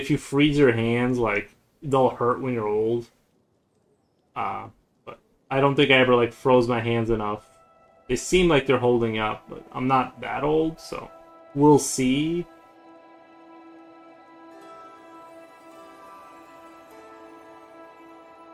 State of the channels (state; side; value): identical; both; correlation 1.00